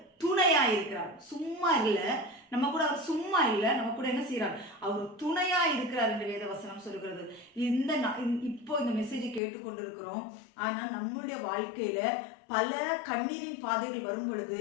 துணையா இருக்கிறார். சும்மா இல்லை, நம்ம கூட அவர் சும்மா இல்லை, நம்ம கூட என்ன செய்யறார், அவர் துணையா இருக்கிறார் என்று வேத வசனம் சொல்லுகிறது. இப்போ இந்த மெசேஜை கேட்டுக்கொண்டு இருக்கிறோம். ஆனா நம்மளுடைய வாழ்க்கையில பல கண்ணீரின் பாதைகள் வரும்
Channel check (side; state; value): right; drops out; at 9.4 s